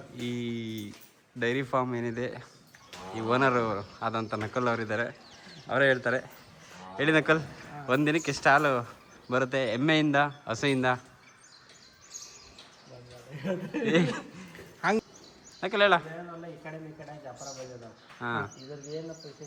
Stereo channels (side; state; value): both; identical; correlation 1.00